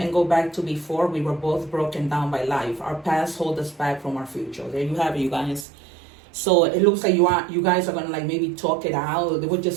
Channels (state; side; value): drops out; left; at 5.7 s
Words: go back to before we were both broken down by life? Our past hold us back from our future. There you have it, you guys. So it looks like you guys are going to maybe talk it out. There were